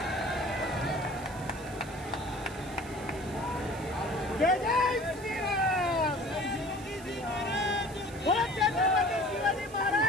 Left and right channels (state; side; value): noise; right; hiss, 19 dB below the sound